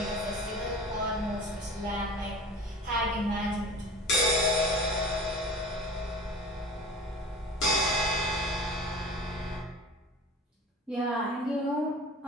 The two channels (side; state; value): both; normal; correlation 0.38